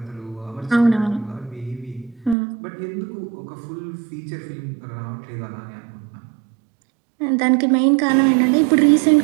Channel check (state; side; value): drops out; left; at 2.4 s